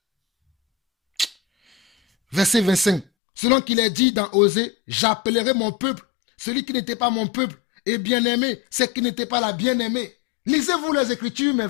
Verset 25. Selon qu'il est dit dans Osée, j'appellerai mon peuple, celui qui n'était pas mon peuple, et bien-aimé, c'est qui n'était pas la bien-aimée. Lisez-vous les Écritures, mes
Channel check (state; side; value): drops out; right; at 3.1 s